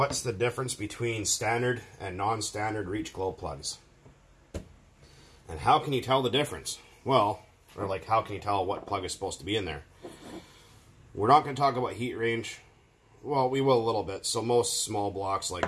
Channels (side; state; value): both; identical; correlation 1.00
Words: the difference between standard and non-standard reach glow plugs? And how can you tell the difference? Well, or like how can you tell what plug is supposed to be in there? We're not going to talk about heat range. Well, we will a little bit. So most small blocks like